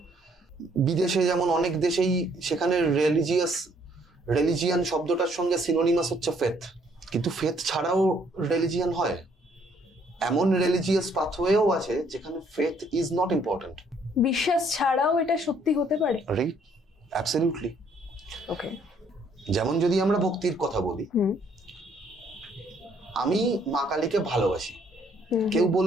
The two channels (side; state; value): both; normal; correlation 0.66